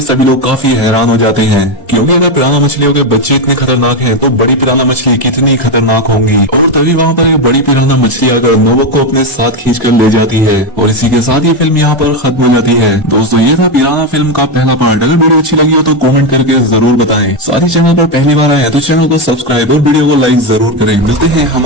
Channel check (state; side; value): normal; both; correlation 0.09